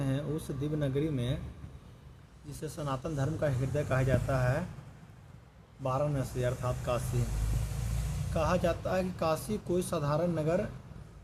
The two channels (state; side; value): identical; both; correlation 1.00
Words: उस दिव्य नगरी में जिसे सनातन धर्म का हृदय कहा जाता है, वाराणसी अर्थात काशी। कहा जाता है कि काशी कोई साधारण नगर